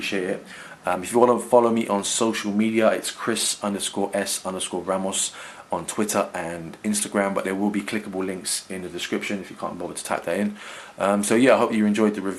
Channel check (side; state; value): both; identical; correlation 1.00